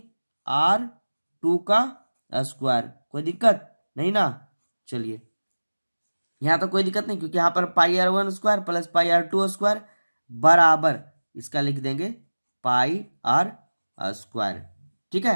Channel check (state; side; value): inverted; both; correlation -1.00